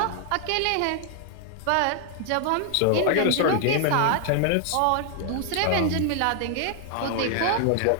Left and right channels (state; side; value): different; both; correlation 0.00